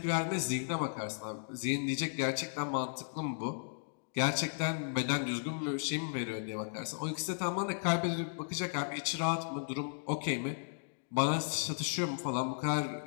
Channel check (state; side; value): silent; right; digital silence